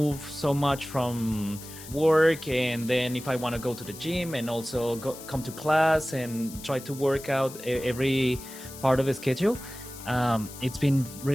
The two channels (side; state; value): left; noise; hiss, 15 dB below the sound